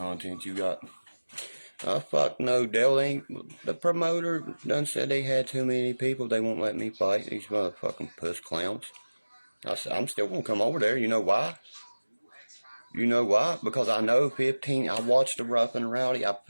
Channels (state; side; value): inverted; both; correlation -1.00